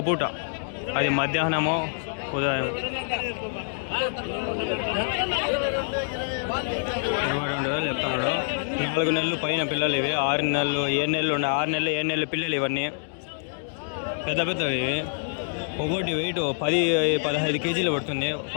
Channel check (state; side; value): silent; right; digital silence